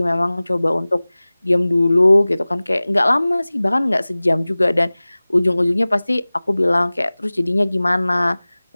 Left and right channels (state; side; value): inverted; both; correlation -0.99